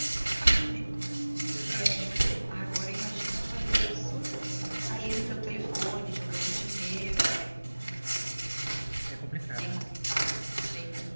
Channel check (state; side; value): inverted; both; correlation -1.00